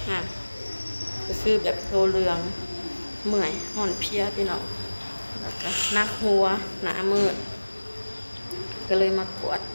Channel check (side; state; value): both; inverted; correlation -1.00